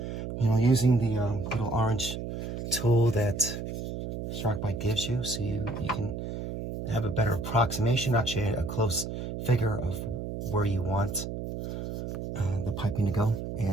you know, using the little orange tool that SharkBite gives you, so you can have a better approximation, actually a close figure of where you want the piping to go.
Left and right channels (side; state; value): right; noise; hum, 6 dB below the sound